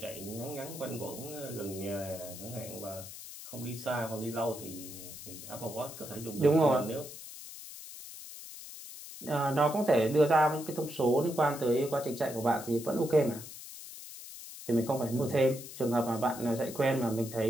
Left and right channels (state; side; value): noise; left; hiss, 13 dB below the sound